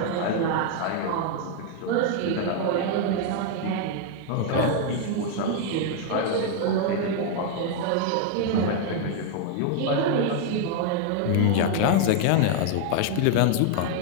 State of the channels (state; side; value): different; both; correlation 0.00